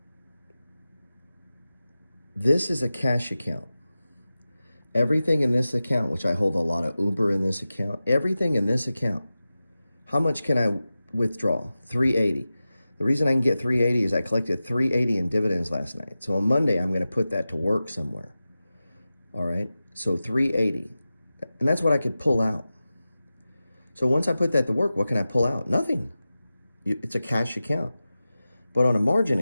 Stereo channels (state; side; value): inverted; both; correlation -0.94